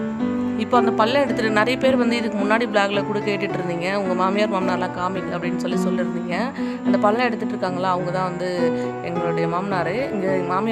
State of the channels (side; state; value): both; identical; correlation 1.00